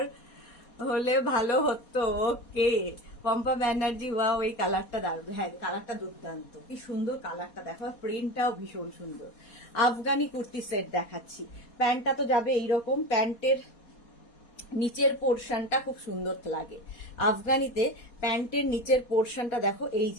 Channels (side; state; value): right; late; 4.2 ms